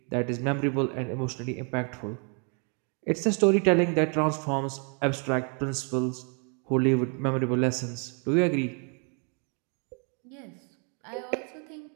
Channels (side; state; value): left; quieter; 39.2 dB